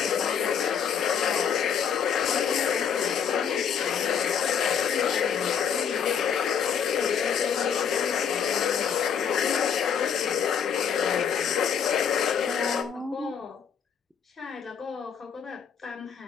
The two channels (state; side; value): quieter; right; 7.6 dB